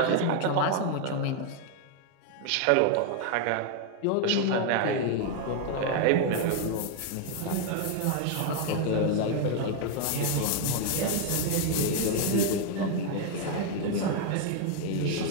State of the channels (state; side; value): different; both; correlation 0.00